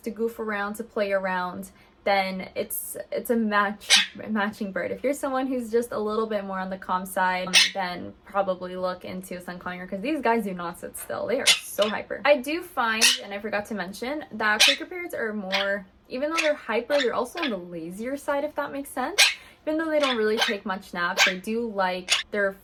goof around, to play around, then it's a matching bird. If you're someone who's just a little bit more on the calm side, then probably look into sun conure, because these guys do not sit still. They are so hyper. I do find, and I forgot to mention, that Quaker parrots are more, even though they're hyper, they're also on the lazier side, if that makes sense. Even though they don't really take much naps, they do like their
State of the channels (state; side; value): identical; both; correlation 1.00